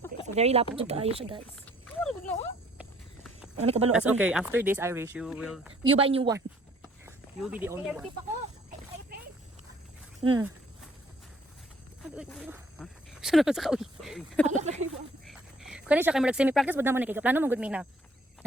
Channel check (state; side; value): normal; both; correlation 0.60